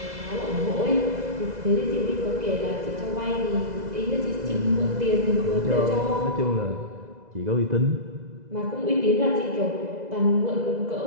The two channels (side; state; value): left; late; 2.0 ms